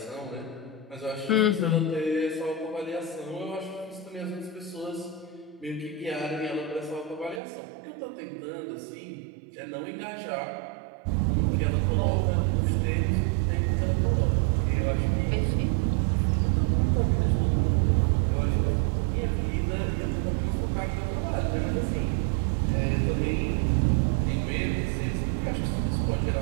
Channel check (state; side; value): drops out; left; at 7.4 s